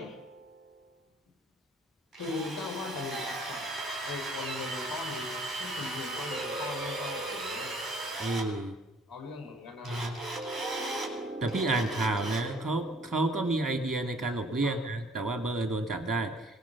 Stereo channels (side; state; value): both; normal; correlation 0.57